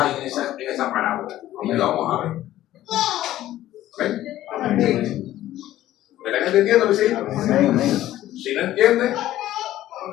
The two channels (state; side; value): quieter; right; 13.9 dB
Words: en esa parábola. Y lo vamos a ver. ¿Ven? ¿Me están entendiendo, mis hijos? Si no entienden,